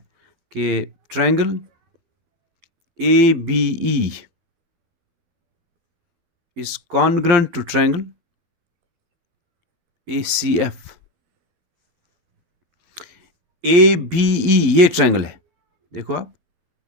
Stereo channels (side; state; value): left; late; 11 ms